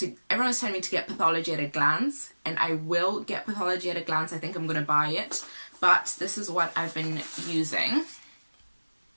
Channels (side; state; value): both; inverted; correlation -1.00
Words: everyone was telling me to get Pathology at a Glance, and I will get Pathology at a Glance. I think I'm gonna buy it, but this is what I've been using.